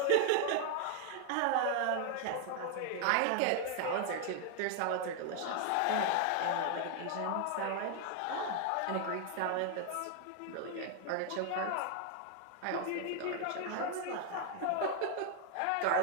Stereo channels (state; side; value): different; both; correlation 0.00